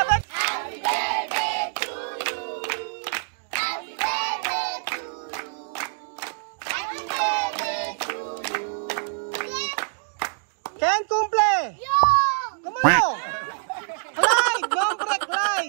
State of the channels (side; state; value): left; silent; digital silence